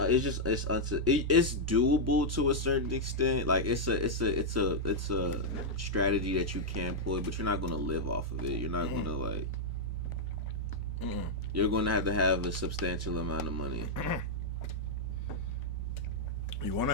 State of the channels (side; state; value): both; normal; correlation -0.05